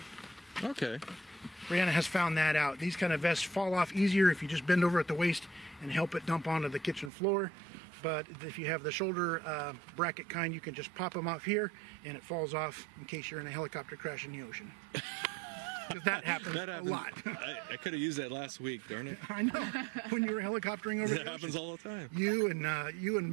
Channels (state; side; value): drops out; left; at 7.1 s